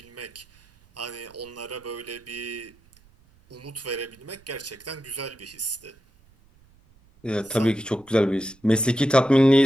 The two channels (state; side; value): noise; right; rumble, 29 dB below the sound